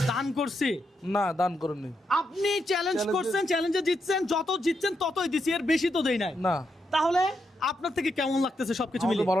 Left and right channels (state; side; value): normal; both; correlation 0.82